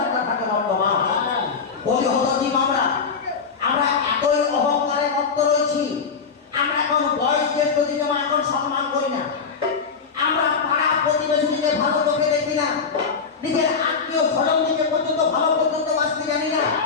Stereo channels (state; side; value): quieter; right; 5.5 dB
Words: থাকে বর্তমান। বলি হতো জীব আমরা এতই অহংকারে মত্ত রয়েছি। আমরা এখন বয়স জ্যেষ্ঠ দিকে এখন সম্মান করি না। আমরা পাড়া প্রতিবেশীকে ভালো চোখে দেখি না। নিজের আত্মীয় স্বজন দিকে পর্যন্ত ভালো পর্যন্ত বাঁচতে জানি না।